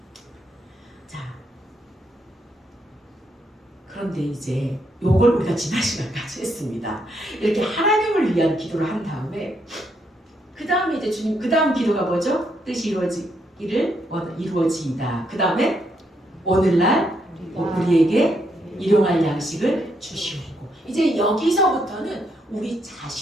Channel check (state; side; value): normal; both; correlation 0.76